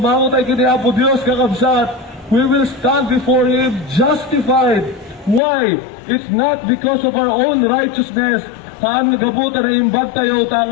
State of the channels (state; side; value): drops out; right; at 5.4 s